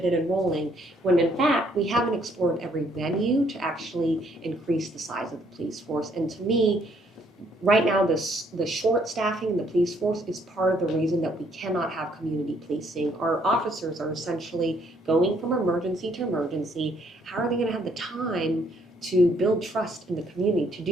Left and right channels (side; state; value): both; normal; correlation 0.68